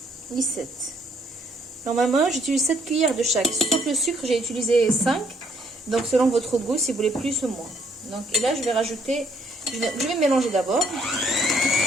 et 7. Normalement, j'utilise 7 cuillères de chaque. Sauf le sucre, j'ai utilisé 5. Donc, selon votre goût, si vous voulez plus ou moins. Donc, et là, je vais rajouter... Je vais mélanger d'abord.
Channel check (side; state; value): both; normal; correlation 0.67